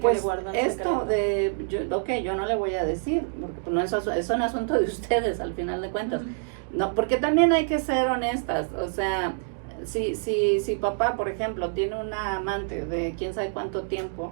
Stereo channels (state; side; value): silent; left; digital silence